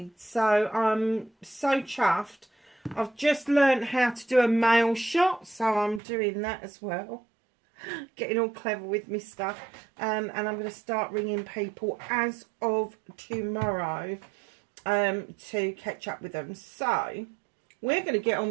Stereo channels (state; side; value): drops out; left; at 6.0 s